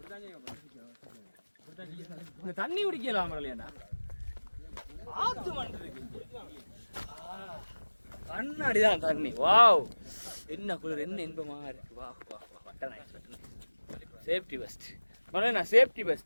இந்த தண்ணி குடிக்கலாம் மரலையாண்டா. ஆத்து மண் இருக்கு. கண்ணாடிதான் தண்ணி. வாவ் என்ன குளிர், என்ன இன்பமா இருக்கு. வா வா வா வட்ட நைஸ். சேஃப்டி பெஸ்ட் மரலையா, சேஃப்டி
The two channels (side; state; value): both; inverted; correlation -1.00